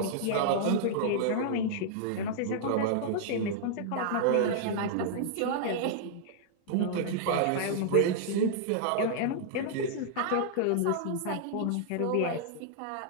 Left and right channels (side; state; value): both; different; correlation -0.01